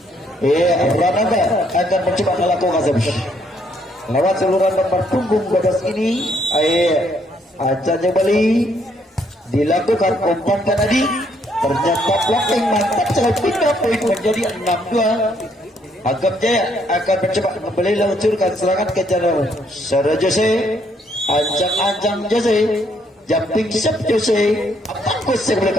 Rananda akan mencoba melakukan servis lewat seluruh nomor punggung 12 ini. Ancang kembali dilakukan, umpankan tadi. Ternyata blocking mantap sekali, pindah poin menjadi 6-2. Agam Jaya akan mencoba kembali meluncurkan serangan ke jalur saudara Jose. Ancang-ancang Jose, jumping shot Jose. Bagus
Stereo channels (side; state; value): both; normal; correlation 0.70